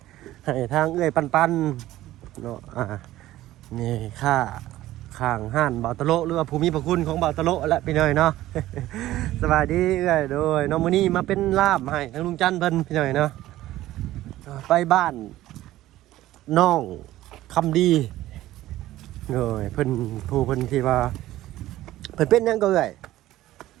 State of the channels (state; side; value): quieter; left; 15.2 dB